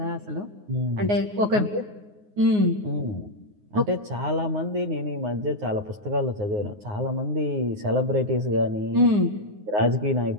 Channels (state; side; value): late; left; 9.6 ms